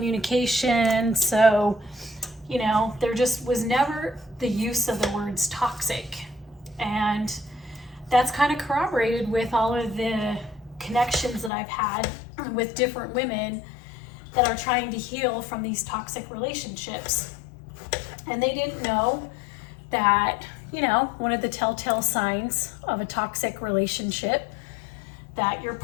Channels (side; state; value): right; drops out; at 11.5 s